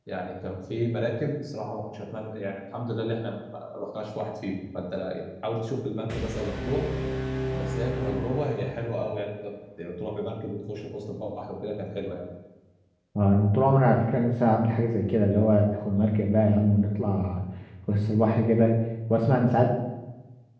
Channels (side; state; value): both; identical; correlation 1.00